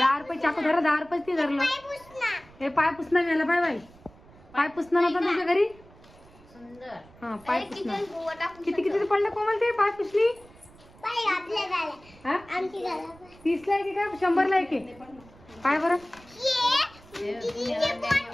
रुपये चाकू धरा. 10 रुपये ते धरलं. हे पाय पुसणं मिळालं. Bye bye. पाय पुसणं नव्हतं तुझ्या घरी? सुंदर. हा पाय पुसणं. किती किती पडलं कोमल ते पाय पुसली? 30 ला एक का 100 ला एक? काय बरं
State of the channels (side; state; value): right; noise; rumble, 24 dB below the sound